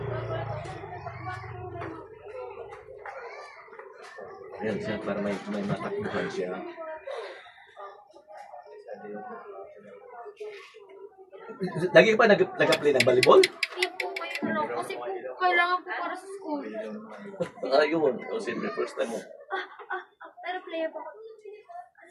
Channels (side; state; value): both; identical; correlation 1.00